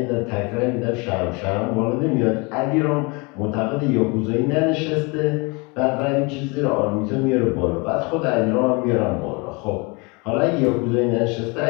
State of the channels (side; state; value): right; quieter; 28.9 dB